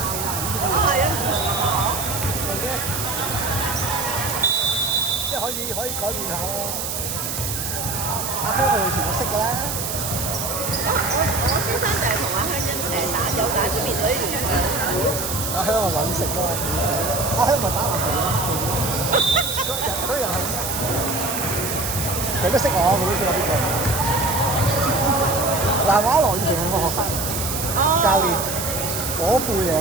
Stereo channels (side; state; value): right; noise; hiss, 3 dB below the sound